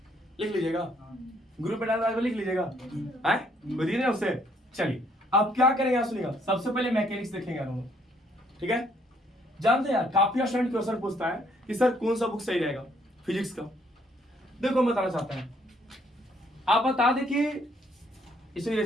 लिख लीजिएगा, ग्रुप पे डाल लिख लीजिएगा, है बताइए ना उससे। चलिए अब क्या करेंगे आप सुनिएगा, सबसे पहले मैकेनिक्स देखेंगे हम, ठीक है। जानते हैं यार काफी स्टूडेंट क्वेश्चन पूछता है कि सर कौन सा बुक सही रहेगा फिजिक्स का। देखो मैं बताना चाहता है, आप बता दे कि इसे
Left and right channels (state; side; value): normal; both; correlation 0.67